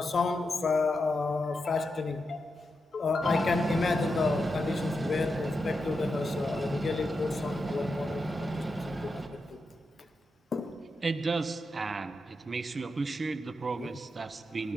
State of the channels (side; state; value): both; normal; correlation 0.87